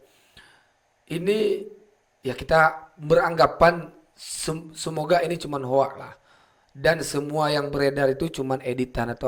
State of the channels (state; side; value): identical; both; correlation 1.00